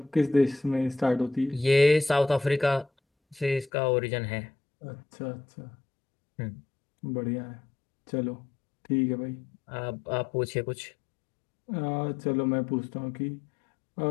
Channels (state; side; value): drops out; right; at 3.7 s